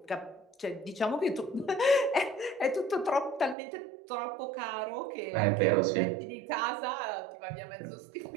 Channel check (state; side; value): drops out; left; at 3.6 s